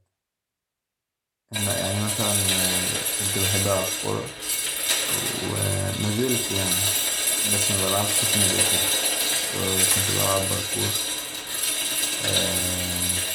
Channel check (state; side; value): identical; both; correlation 1.00